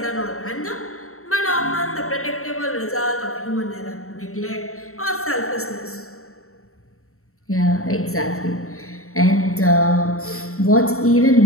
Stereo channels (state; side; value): late; right; 0.63 ms